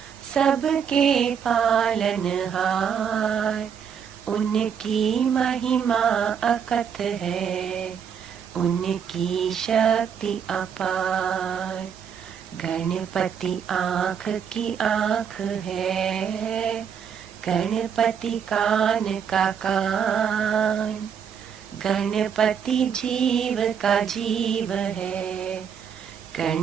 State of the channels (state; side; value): quieter; left; 7.6 dB